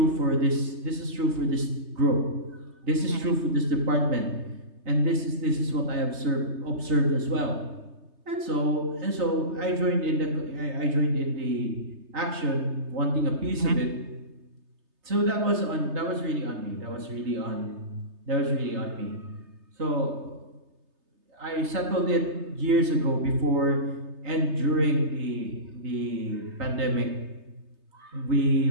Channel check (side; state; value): left; late; 3.3 ms